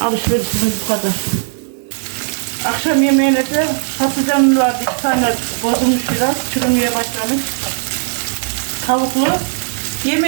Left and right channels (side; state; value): left; silent; digital silence